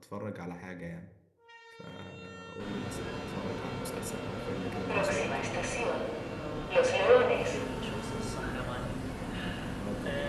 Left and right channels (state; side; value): identical; both; correlation 1.00